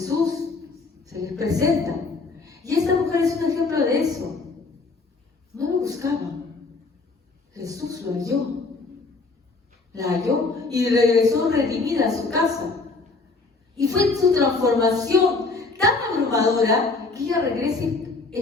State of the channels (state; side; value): quieter; right; 3.8 dB